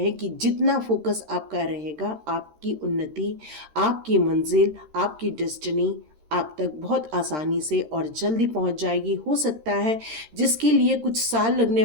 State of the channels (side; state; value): left; late; 13 ms